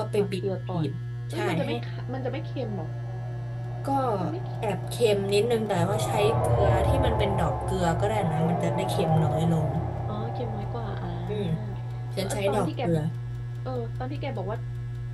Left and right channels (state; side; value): identical; both; correlation 1.00